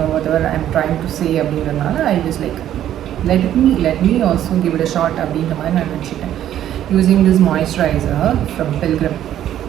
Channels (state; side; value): quieter; left; 11.5 dB